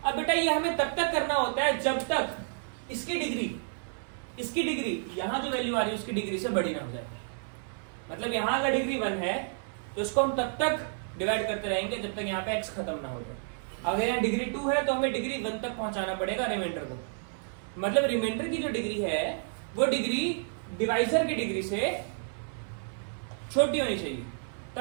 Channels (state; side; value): silent; left; 57 dB below the other